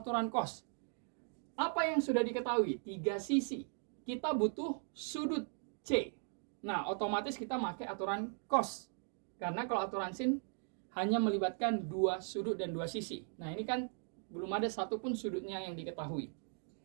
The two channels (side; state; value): left; silent; 52 dB below the other